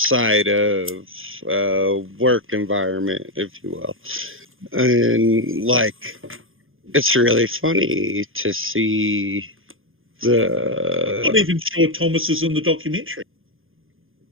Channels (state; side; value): late; left; 0.59 ms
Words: of work environment, if you will. And, like, it's really funny to see Not even sure Thomas is in the documentary.